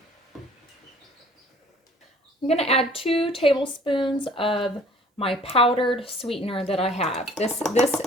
I'm gonna add 2 tablespoons of my powdered sweetener that I have. This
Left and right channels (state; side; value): normal; both; correlation 0.53